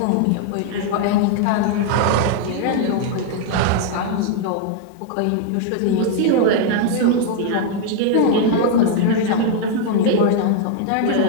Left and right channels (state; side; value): different; both; correlation 0.00